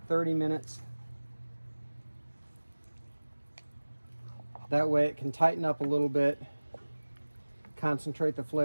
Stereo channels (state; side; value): inverted; both; correlation -1.00